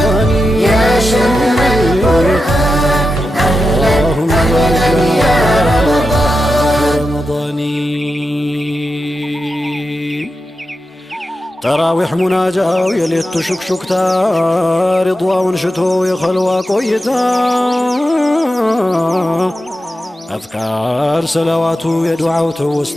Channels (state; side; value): normal; both; correlation 0.89